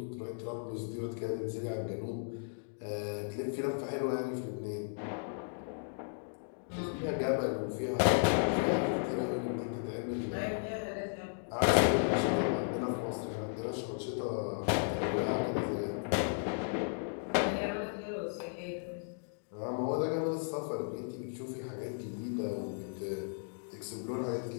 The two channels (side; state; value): right; silent; digital silence